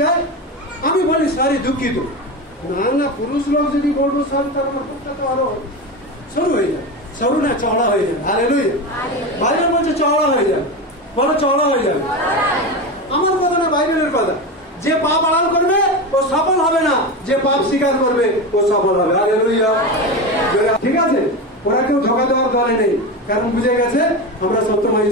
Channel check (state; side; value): normal; both; correlation 0.21